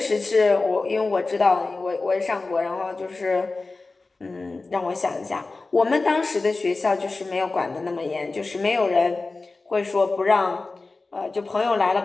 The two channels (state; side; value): quieter; right; 3.6 dB